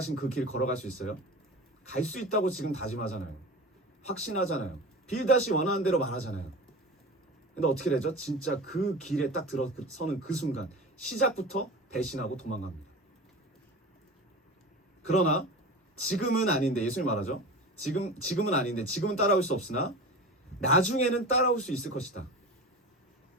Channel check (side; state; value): both; normal; correlation 0.32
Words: 그 길 걸어갈 수 있어요? 갈 수 있다고 지금 다짐하잖아요. 확신하잖아요. 빌닷이 원하는 대로 말하잖아요. 근데 어떻게 되죠? 진짜 그 길에 딱 들어서는 그 순간 시작부터 배신하고 도망갑니다. 그러나 지금은 아닌데, 예수님 말하죠. 지금은 아닌데, 지금은 따라올 수 없으나 나중에는 따라올 수 있을 것이다.